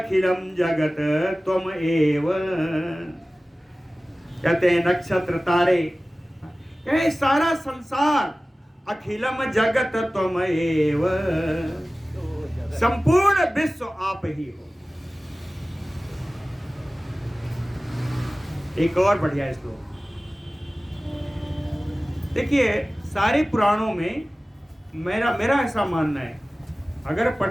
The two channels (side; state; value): both; normal; correlation 0.97